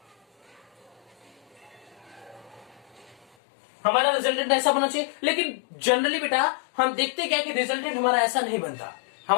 हमारा रिजल्टेंट ऐसा बनना चाहिए, लेकिन जनरली बेटा हम देखते क्या कि रिजल्टेंट हमारा ऐसा नहीं बनता।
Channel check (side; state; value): right; drops out; at 3.2 s